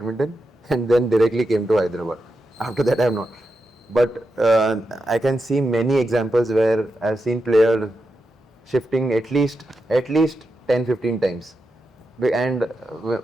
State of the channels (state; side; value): normal; both; correlation 0.88